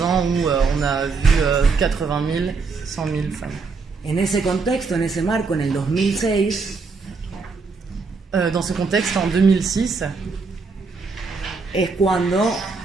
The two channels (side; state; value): left; quieter; 4.5 dB